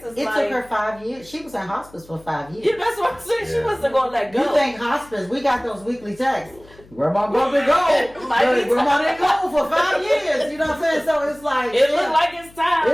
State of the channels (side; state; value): left; noise; hum, 25 dB below the sound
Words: It took her 5 years. She was in hospice for 5 years. Yeah, that's what I'm saying. She wasn't going to let go. You think hospice, we got those weekly texts. Grandma brother go. Like Grandma didn't go for 5 years. You know what I'm saying? So it's like. It looked like it's time.